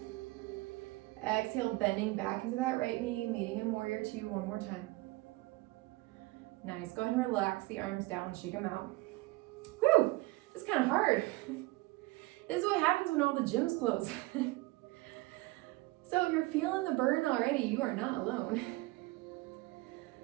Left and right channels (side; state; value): left; quieter; 20.9 dB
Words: Exhale, bending back into that right knee, meeting in warrior two one more time. Nice, go ahead and relax the arms down, shake them out. Whew, it's kind of hard. This is what happens when all the gyms close. So if you're feeling the burn already, you are not alone.